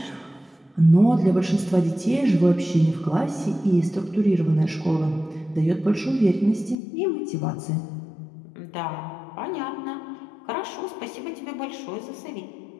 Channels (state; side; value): drops out; right; at 6.8 s